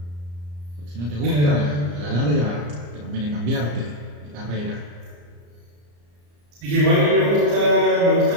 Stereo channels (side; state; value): left; late; 34 ms